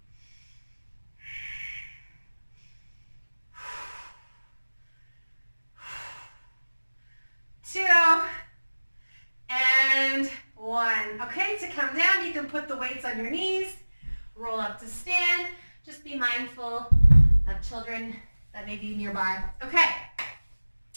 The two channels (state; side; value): inverted; both; correlation -1.00